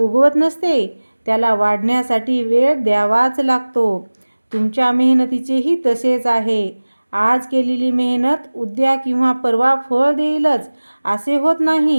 नसते, त्याला वाढण्यासाठी वेळ द्यावाच लागतो. तुमच्या मेहनतीचेही तसेच आहे. आज केलेली मेहनत उद्या किंवा परवा फळ देईलच असे होत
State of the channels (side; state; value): both; inverted; correlation -1.00